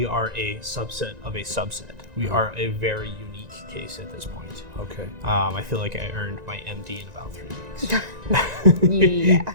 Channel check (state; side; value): late; left; 1.9 ms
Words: are a subset of a subset. We are a very unique case at this point. Okay. I feel like I earned my MD in about 3 weeks. Yeah.